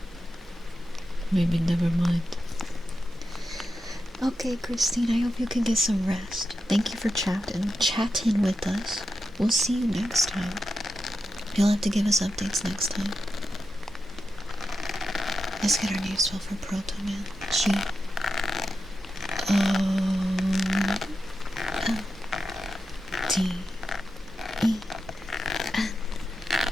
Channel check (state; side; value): normal; both; correlation 0.89